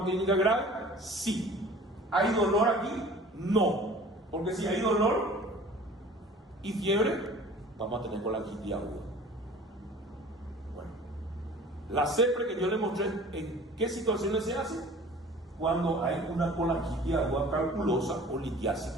clínica grave? Sí. ¿Hay dolor aquí? No. Porque si hay dolor y fiebre, vamos a tener colangitis aguda. Bueno, la CEPRE que yo le mostré, ¿en qué situaciones se hace? Cuando hay una colangitis aguda calculosa o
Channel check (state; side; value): normal; both; correlation 0.45